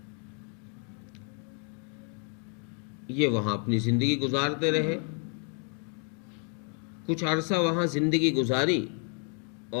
یہ وہاں اپنی زندگی گزارتے رہے. کچھ عرصہ وہاں زندگی گزاری،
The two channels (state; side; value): quieter; right; 38.1 dB